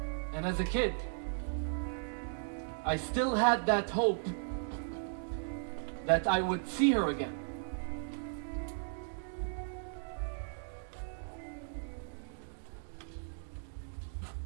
And as a kid, I still had that hope that I would see her again.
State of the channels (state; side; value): silent; left; digital silence